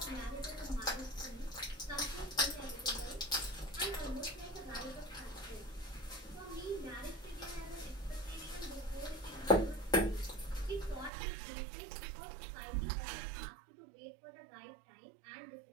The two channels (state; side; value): drops out; left; at 11.1 s